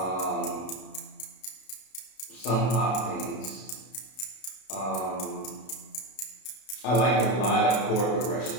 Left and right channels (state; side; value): late; right; 32 ms